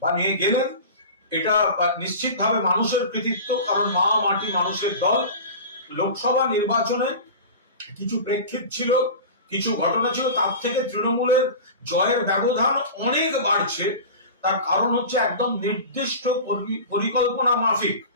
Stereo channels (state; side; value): inverted; both; correlation -0.33